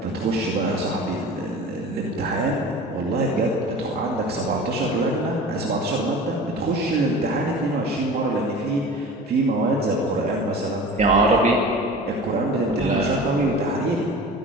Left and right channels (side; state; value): both; normal; correlation 0.38